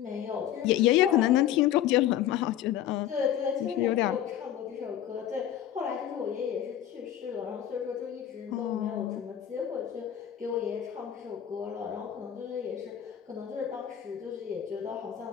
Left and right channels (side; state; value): right; quieter; 10.9 dB